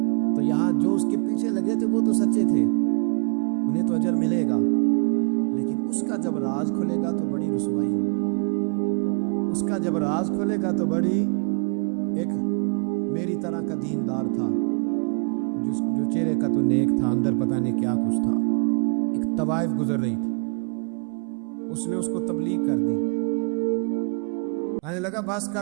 تو یہاں جو اس کے پیچھے لگے تھے وہ تو سچے تھے، انہیں تو اجر ملے گا، لیکن اس کا جب راز کھلے گا تو بڑی رسوائی ہوگی۔ اس کا جب راز کھلے گا تو بڑی، ایک میری طرح کا دیندار تھا، جو چہرے کا تو نیک تھا، اندر پتہ نہیں کیا کچھ تھا، ایک طوائف گزر رہی تھی، اس نے اس کو تبلیغ کر دی، کہنے لگا بس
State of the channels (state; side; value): quieter; left; 38.0 dB